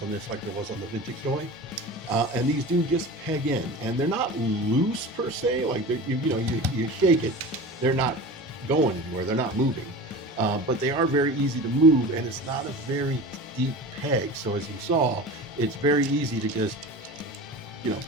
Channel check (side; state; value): both; normal; correlation 0.34